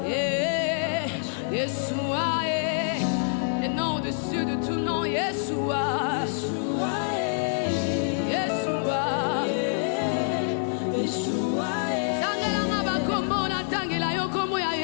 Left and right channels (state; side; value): silent; right; digital silence